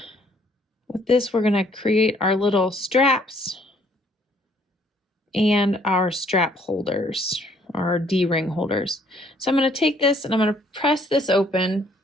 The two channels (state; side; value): normal; both; correlation 0.63